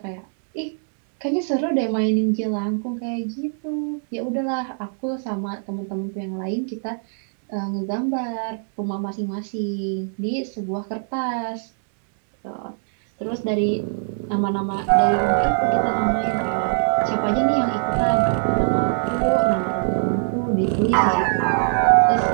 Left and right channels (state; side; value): silent; left; 63 dB below the other